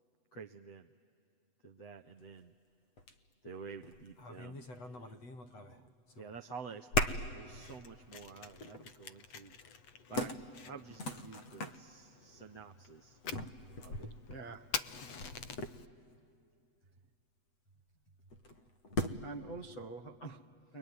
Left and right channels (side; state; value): right; late; 8.1 ms